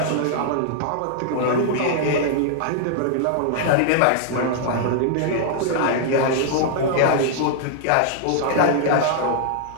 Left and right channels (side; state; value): both; different; correlation -0.01